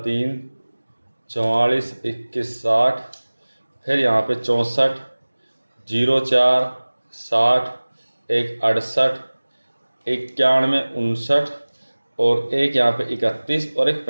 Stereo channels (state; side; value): inverted; both; correlation -1.00